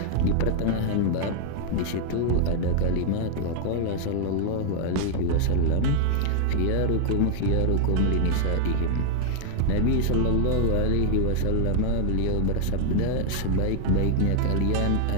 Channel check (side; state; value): both; different; correlation 0.00